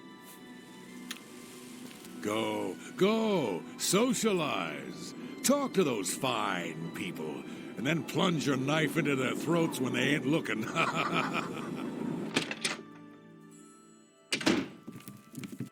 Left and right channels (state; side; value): identical; both; correlation 1.00